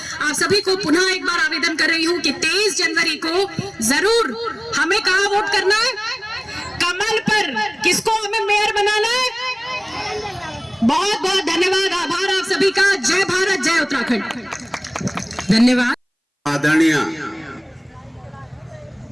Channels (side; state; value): both; identical; correlation 1.00